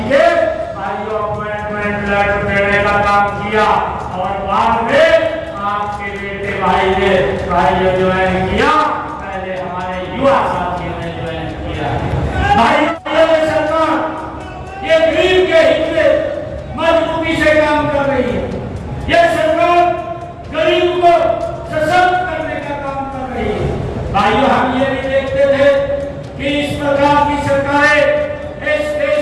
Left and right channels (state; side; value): identical; both; correlation 1.00